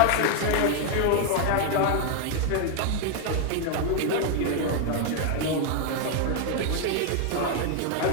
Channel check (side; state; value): both; different; correlation 0.00